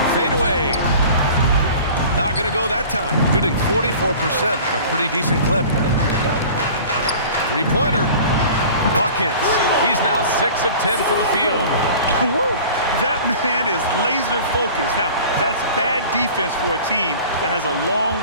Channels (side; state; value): both; inverted; correlation -0.42